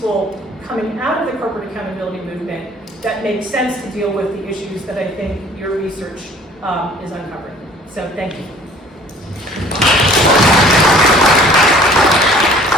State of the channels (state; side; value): normal; both; correlation 0.53